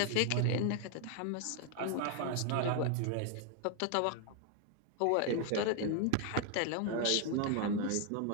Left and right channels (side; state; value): both; different; correlation 0.00